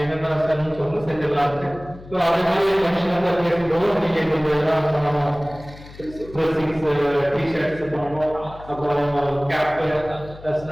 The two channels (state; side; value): noise; left; hum, 18 dB below the sound